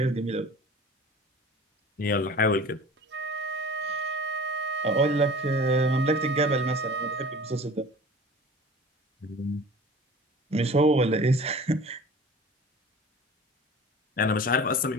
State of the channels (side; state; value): both; normal; correlation 0.41